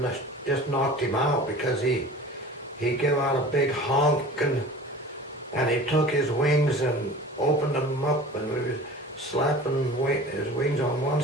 just knocked him out because he gave out a big honk, and he took his wings and opened them up, and we were slapping his wings on one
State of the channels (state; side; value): normal; both; correlation 0.40